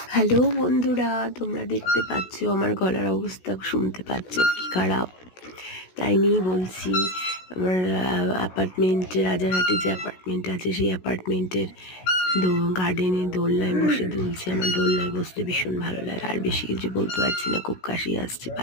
হ্যালো বন্ধুরা, তোমরা দেখতে পাচ্ছ আমার গলার অবস্থা, শুনতে পাচ্ছ কি খারাপ। তাই নিয়েই বলছি, আমার অ্যাপার্টমেন্টে, রাজারহাটে যে অ্যাপার্টমেন্ট আছে সেই অ্যাপার্টমেন্টের গার্ডেনে দোলনায় বসে দুলছে। আমার দোলনায় বসতে ভীষণ ভালো লাগে। আর বেশি কিছু বলতে পারছি না, খুব কাশি আসছে।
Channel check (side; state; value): right; late; 16 ms